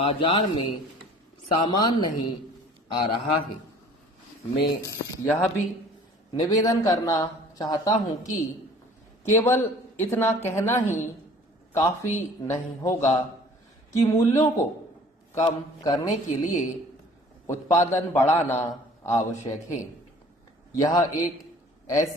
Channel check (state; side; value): normal; both; correlation 0.50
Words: में सामान नहीं आ रहा है। मैं यह भी निवेदन करना चाहता हूं कि केवल इतना कहना ही काफी नहीं होगा कि मूल्यों को कम करने के लिए उत्पादन बढ़ाना आवश्यक है। यह एक